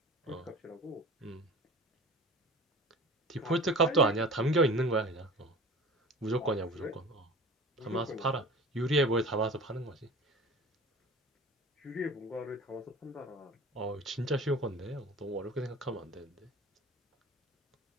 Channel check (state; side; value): normal; both; correlation 0.39